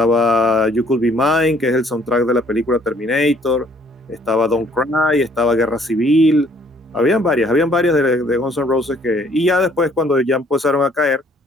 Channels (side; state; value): both; normal; correlation 0.61